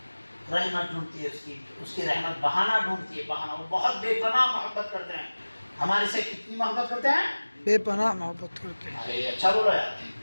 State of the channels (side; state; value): both; inverted; correlation -1.00